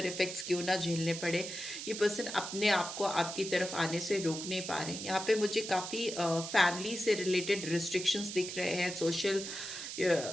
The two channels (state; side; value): noise; right; hiss, 7 dB below the sound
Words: इफेक्ट्स क्यों ना झेलने पड़े, ये पर्सन अपने आप को आपकी तरफ आने से रोक नहीं पा रहे हैं। यहाँ पे मुझे काफ़ी फैमिली से रिलेटेड रिस्ट्रिक्शंस दिख रहे हैं। सोशल